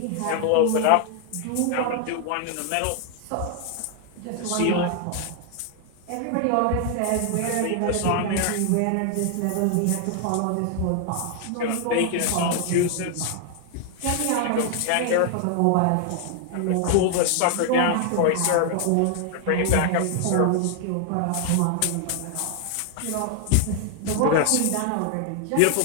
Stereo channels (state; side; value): different; both; correlation 0.00